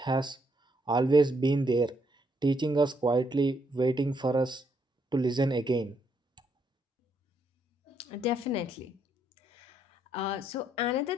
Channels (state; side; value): normal; both; correlation 0.74